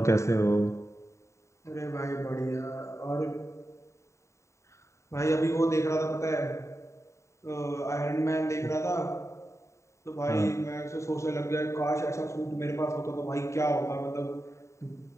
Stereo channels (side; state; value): right; late; 0.14 ms